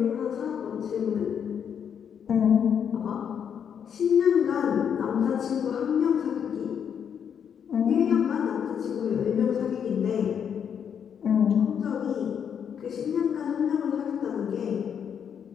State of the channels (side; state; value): right; quieter; 7.9 dB